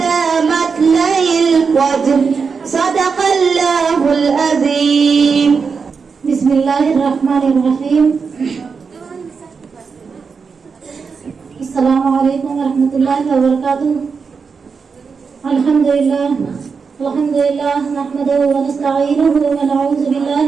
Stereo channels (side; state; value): left; quieter; 5.4 dB